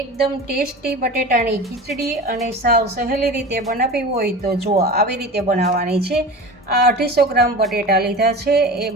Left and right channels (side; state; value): both; normal; correlation 0.33